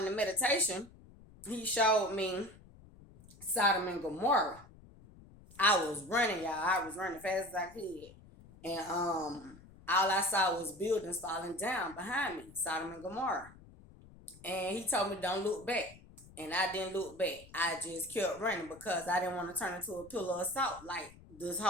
the meditation, he showed me Sodom and Gomorrah. I was running, y'all. I was running fast as I could. And all I saw was buildings falling down behind me, Sodom and Gomorrah. And he told me don't look back. And I didn't look back. I just kept running because I didn't want to turn into a pillar of salt like this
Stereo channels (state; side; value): noise; left; rumble, 22 dB below the sound